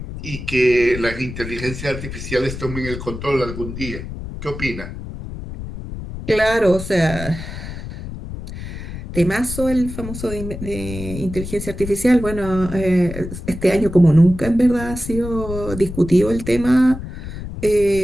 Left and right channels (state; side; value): noise; left; rumble, 9 dB below the sound